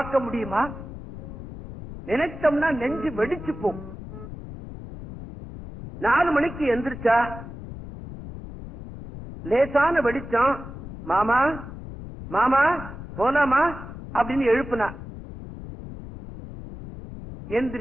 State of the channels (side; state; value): left; noise; rumble, 12 dB below the sound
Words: முடியுமா? நினைச்சோம்னா நெஞ்சு வெடிச்சு போகும். 4 மணிக்கு எந்திரிச்சா லேசான வெடிச்சம், மாமா மாமா போலாமா அப்படின்னு எழுப்புனா.